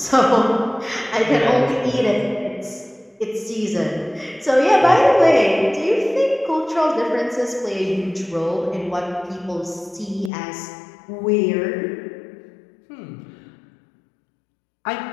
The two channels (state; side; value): drops out; right; at 10.3 s